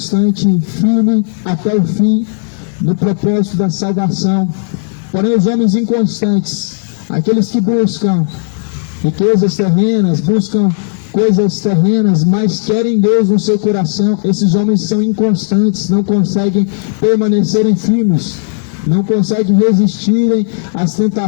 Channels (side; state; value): right; silent; digital silence